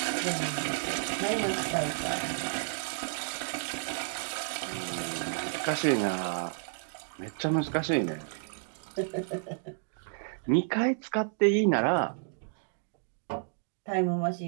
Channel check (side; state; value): left; silent; digital silence